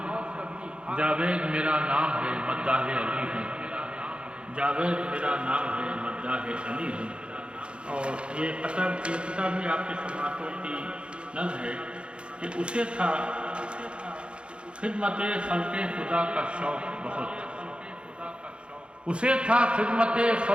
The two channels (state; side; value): late; left; 0.057 ms